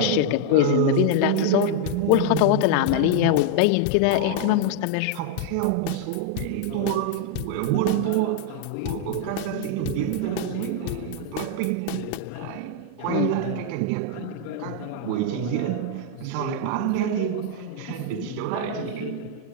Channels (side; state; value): both; different; correlation 0.00